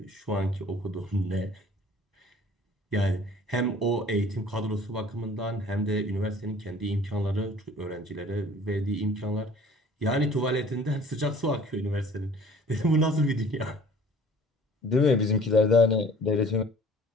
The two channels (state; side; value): normal; both; correlation 0.50